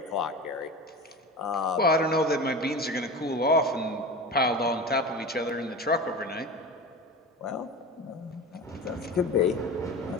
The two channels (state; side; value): normal; both; correlation 0.30